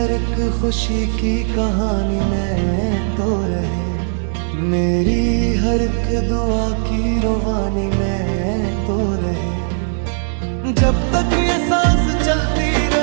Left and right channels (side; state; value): left; silent; 66 dB below the other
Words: एक खुशी की कहानी में तो रहे मेरी हर एक दुआ की रुबानी में तो रहे जब तक ये सांस चलती